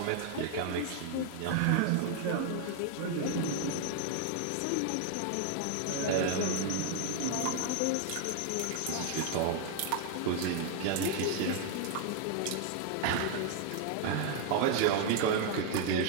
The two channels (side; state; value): both; different; correlation 0.00